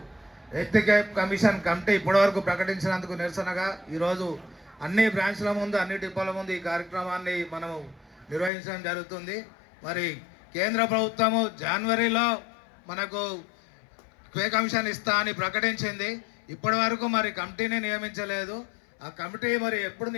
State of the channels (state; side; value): drops out; right; at 8.5 s